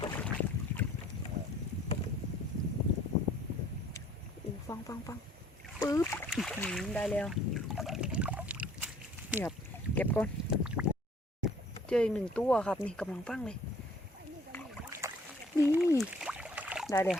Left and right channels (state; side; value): normal; both; correlation 0.56